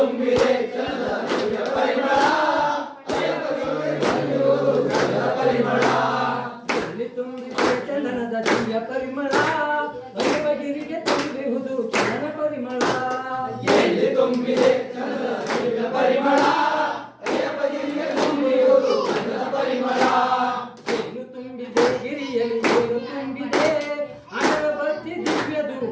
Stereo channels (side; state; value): both; identical; correlation 1.00